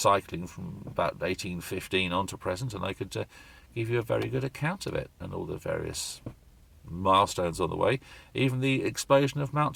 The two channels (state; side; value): identical; both; correlation 1.00